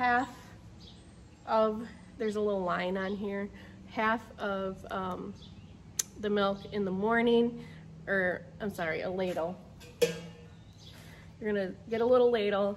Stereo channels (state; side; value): identical; both; correlation 1.00